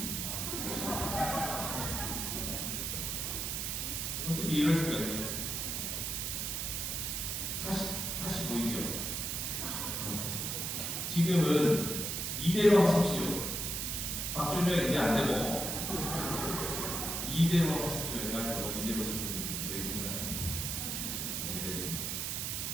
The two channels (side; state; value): right; noise; hiss, 2 dB below the sound